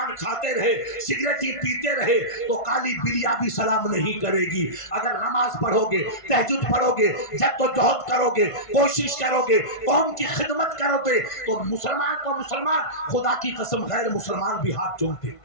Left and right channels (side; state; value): right; late; 1.5 ms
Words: کھاتے رہے، سگریٹ ہی پیتے رہے تو کالی بلیا بھی سلام نہیں کرے گی۔ اگر نماز پڑھو گے، تہجد پڑھو گے، جد و جہد کرو گے، کوشش کرو گے، قوم کی خدمت کرو گے تو مسلمان کو مسلمان، خدا کی قسم غیر مسلمان بھی ہاتھ چومتے۔